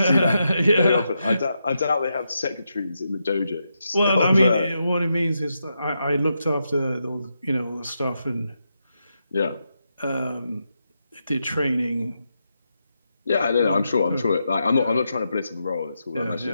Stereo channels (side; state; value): both; inverted; correlation -0.85